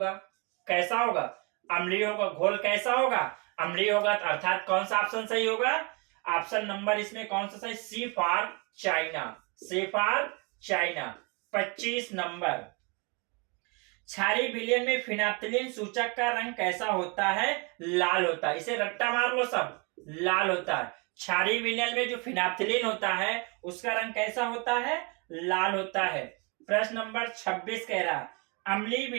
कैसा होगा? अम्लीय होगा। घोल कैसा होगा? अम्लीय होगा। अर्थात कौन सा ऑप्शन सही होगा? ऑप्शन नंबर इसमें कौन सा सही? C for China. C for China. 25 number, क्षारीय विलयन में फिनाप्थिलीन सूचक का रंग कैसा होता है? लाल होता है। इसे रट्टा मार लो सब, लाल होता है। क्षारीय विलयन में जो फिनाप्थिलीन होता है उसका रंग कैसा होता है? लाल होता है। प्रश्न नंबर 26 कह रहा, अम्लीय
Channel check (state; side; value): quieter; left; 31.3 dB